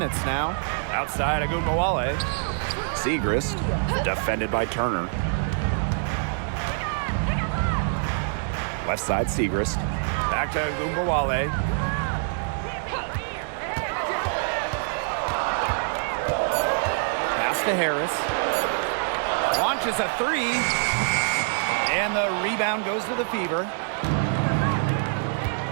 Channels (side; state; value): left; silent; digital silence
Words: now. Outside Agumbawale. Segrist, defended by Turner. Left side, Segrist. Back to Agumbawale. Pass to Harris. Launches a 3. And the rebound goes to the Fever.